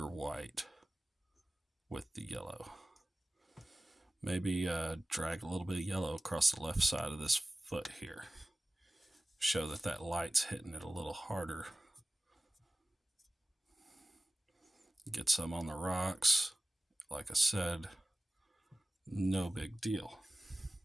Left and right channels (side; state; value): both; normal; correlation 0.97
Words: white with the yellow. Maybe drag a little bit of yellow across the left side of this foot here. Show that light's hitting it a little harder. Get some on the rocks. Like I said, no big deal.